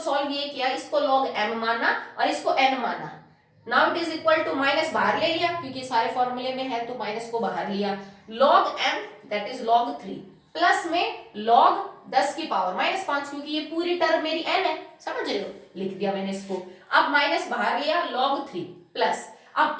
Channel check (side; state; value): both; identical; correlation 1.00